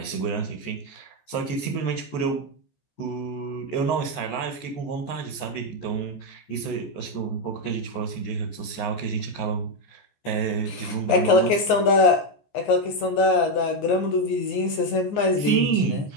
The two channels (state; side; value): late; right; 14 ms